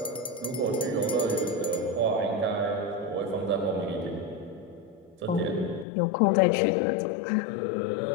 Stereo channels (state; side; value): drops out; right; at 5.9 s